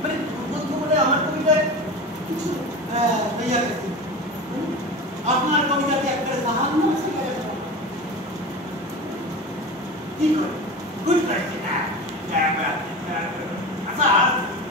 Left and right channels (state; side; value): normal; both; correlation 0.29